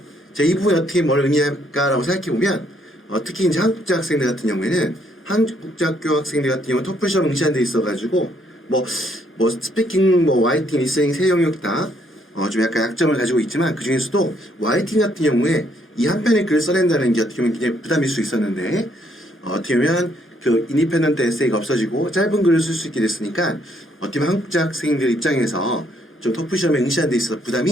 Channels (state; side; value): normal; both; correlation 0.70